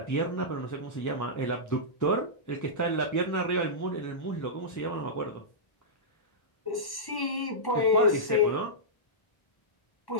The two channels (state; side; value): late; right; 1.1 ms